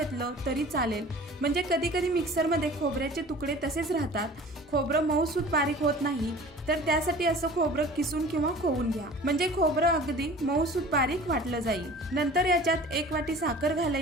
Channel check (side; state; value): both; normal; correlation 0.43